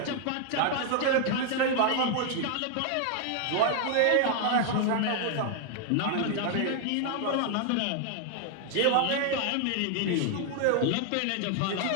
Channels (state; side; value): different; both; correlation 0.00